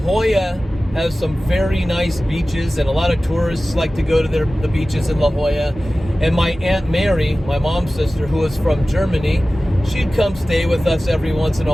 has some very nice beaches, and a lot of tourists like to go to the beaches in La Jolla. And my Aunt Mary, my mom's sister, who was from Germany, she'd come stay with us every once in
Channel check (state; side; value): normal; both; correlation 0.96